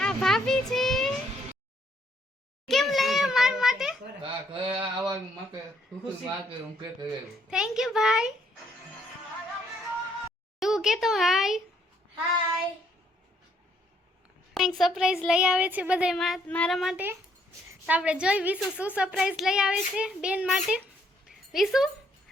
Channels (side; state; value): both; normal; correlation 0.69